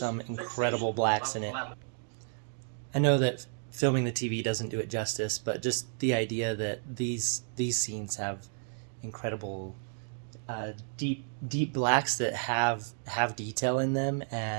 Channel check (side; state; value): left; silent; digital silence